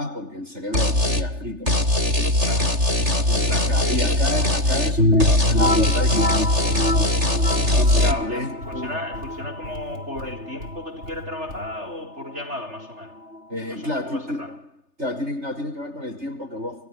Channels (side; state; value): left; late; 3.3 ms